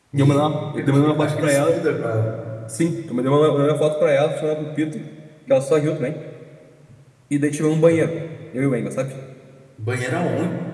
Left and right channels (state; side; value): identical; both; correlation 1.00